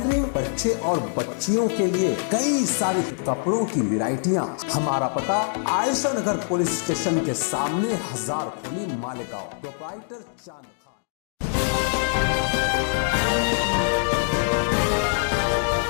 बच्चे और बच्चियों के लिए कई सारे कपड़ों की वैरायटियां। हमारा पता आयशा नगर पुलिस स्टेशन के सामने, हजार खोली, मालेगांव। प्रोप्राइटर चांद खान।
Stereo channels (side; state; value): right; silent; digital silence